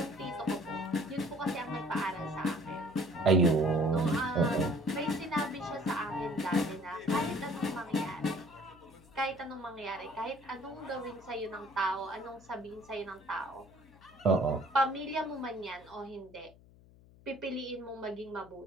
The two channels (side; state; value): left; noise; hum, 24 dB below the sound